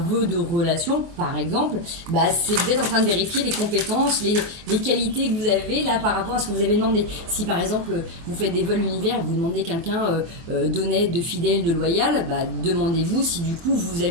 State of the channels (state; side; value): late; left; 24 ms